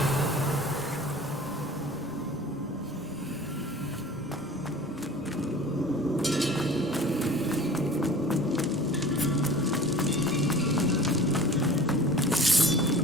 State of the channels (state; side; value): normal; both; correlation 0.42